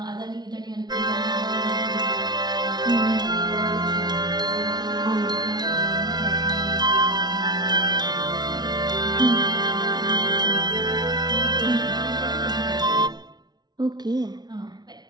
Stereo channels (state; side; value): late; left; 0.20 ms